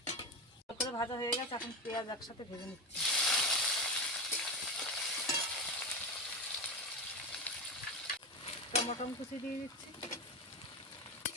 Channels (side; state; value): both; normal; correlation 0.19